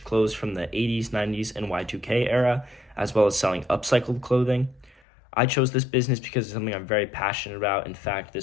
clothes from the 80s, 90s, and Y2K era, as well as selling upcycled clothing. I chose this business because it's something I'm very passionate about. In fact,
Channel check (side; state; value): right; drops out; at 5.0 s